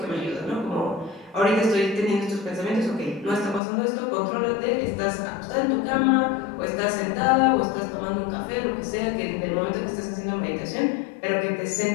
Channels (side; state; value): right; drops out; at 3.6 s